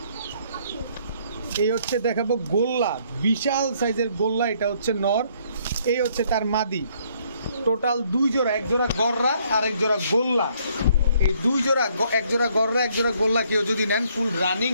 এই হচ্ছে দেখাবো গোল্লা, বিশাল সাইজের গোল্লা, এটা হচ্ছে নর, এই হচ্ছে তার মাদি। টোটাল 2 জোড়া, এক জোড়া গররা আর এক জোড়া গোল্লা। এই 2 জোড়া, এক জোড়া গররা এক জোড়া গোল্লা কেউ যদি নেন ফুল রানিং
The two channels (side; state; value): both; inverted; correlation -0.66